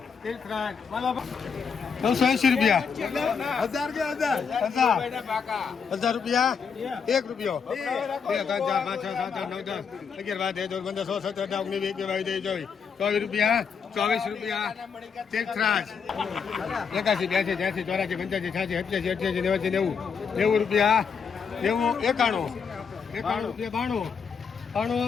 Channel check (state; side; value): quieter; right; 6.2 dB